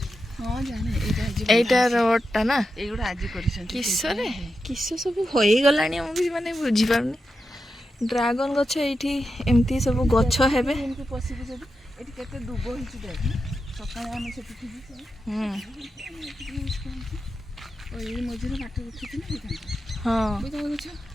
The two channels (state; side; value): normal; both; correlation 0.89